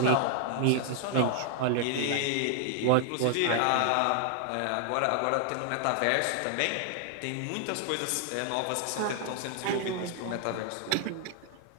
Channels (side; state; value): both; different; correlation 0.00